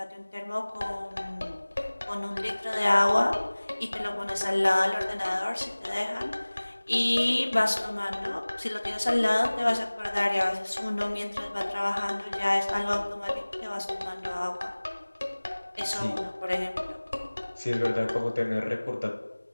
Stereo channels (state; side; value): inverted; both; correlation -1.00